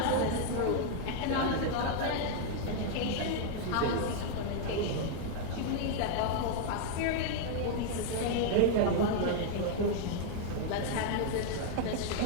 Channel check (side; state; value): both; different; correlation 0.00